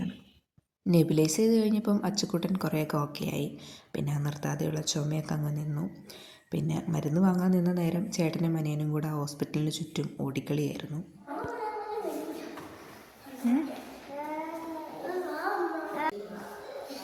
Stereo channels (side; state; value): both; identical; correlation 1.00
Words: നെബുലൈസ് ചെയ്ത് കഴിഞ്ഞപ്പം അച്ചുക്കുട്ടൻ കുറേയൊക്കെ ഓക്കെ ആയി. പിന്നെ നിർത്താതെയുള്ള ചുമയൊക്കെ അങ്ങ് നിന്നു. പിന്നെ മരുന്ന് വാങ്ങാൻ നിന്ന നേരം ചേട്ടനും അനിയനും കൂടെ ഹോസ്പിറ്റലിന് ചുറ്റും ഓടിക്കളിയായിരുന്നു.